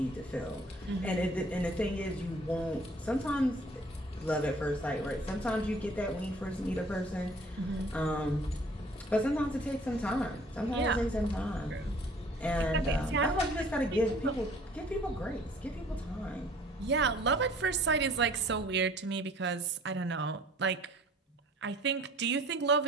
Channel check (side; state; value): both; normal; correlation 0.53